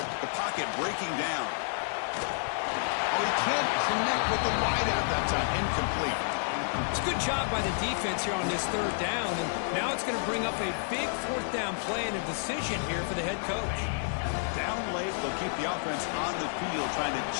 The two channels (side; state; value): right; silent; digital silence